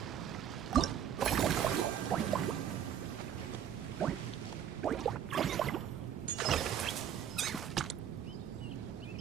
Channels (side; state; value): left; quieter; 9.4 dB